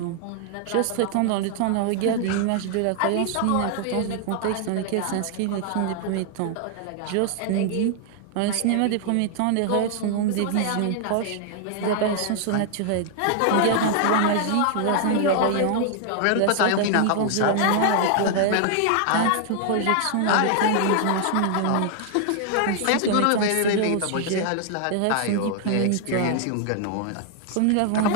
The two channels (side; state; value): both; different; correlation 0.00